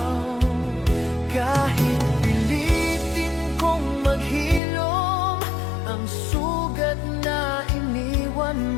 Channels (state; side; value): drops out; right; at 4.6 s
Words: Kahit pilitin kong maghilom ang sugat na iniwan